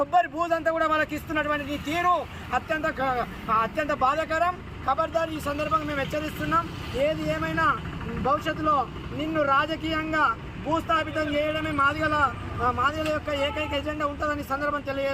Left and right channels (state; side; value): identical; both; correlation 1.00